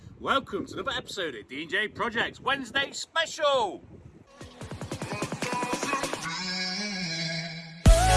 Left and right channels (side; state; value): both; identical; correlation 1.00